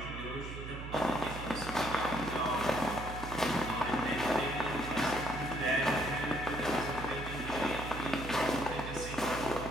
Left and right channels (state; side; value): noise; right; hum, 8 dB below the sound